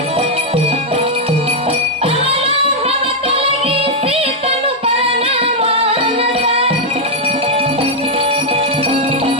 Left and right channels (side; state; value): both; normal; correlation -0.01